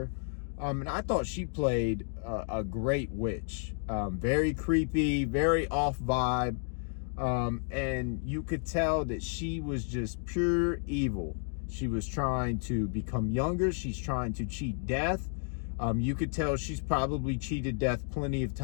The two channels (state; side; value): silent; right; 57 dB below the other